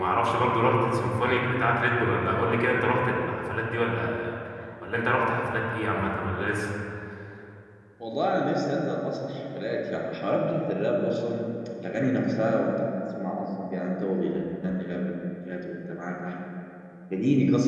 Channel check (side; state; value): both; identical; correlation 1.00